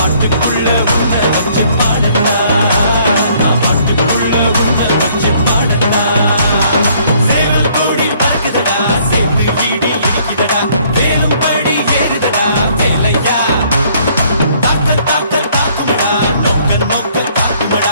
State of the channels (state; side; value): inverted; both; correlation -0.62